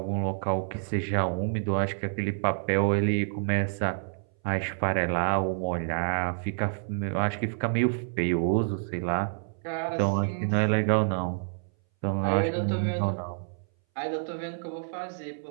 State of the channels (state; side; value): silent; left; 59 dB below the other